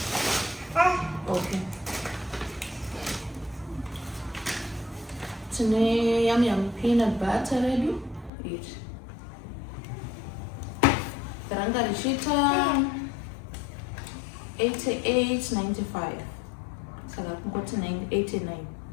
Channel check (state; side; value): drops out; right; at 8.3 s